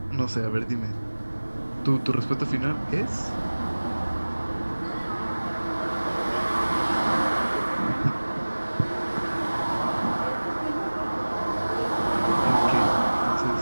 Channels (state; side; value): inverted; both; correlation -1.00